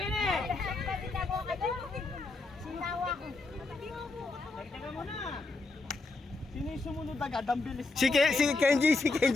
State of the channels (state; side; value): quieter; right; 3.5 dB